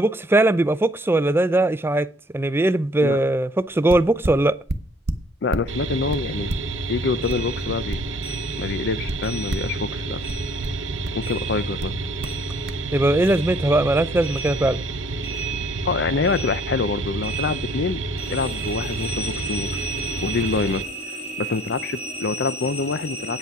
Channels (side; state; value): both; normal; correlation 0.58